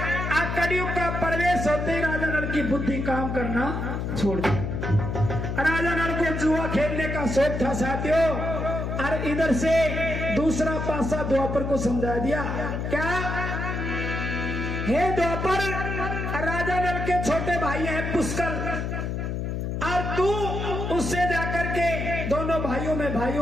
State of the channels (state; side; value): noise; left; hum, 2 dB below the sound